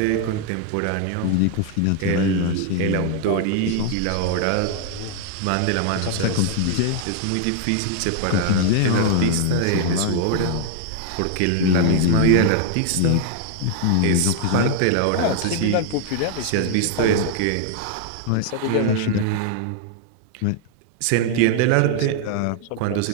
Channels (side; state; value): both; different; correlation 0.00